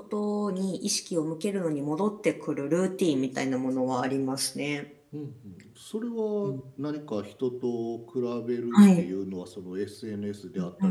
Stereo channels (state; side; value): identical; both; correlation 1.00